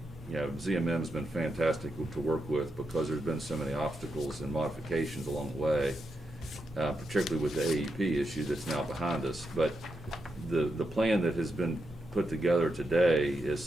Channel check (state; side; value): normal; both; correlation 0.85